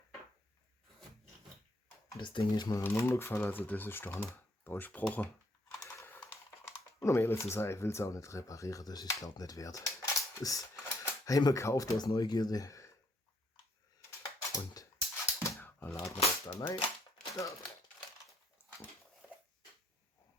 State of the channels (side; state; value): both; normal; correlation 0.70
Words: Das Ding ist mir runtergefallen, also das ist da durchgebrochen. Und um ehrlich zu sein, ich will es auch nicht reparieren, das ist glaube ich nicht wert. Das haben wir gekauft aus Neugierde. Und dann laden wir das da rein. Ja.